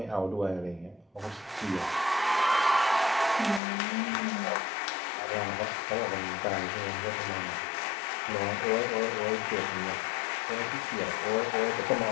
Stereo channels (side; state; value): right; drops out; at 3.6 s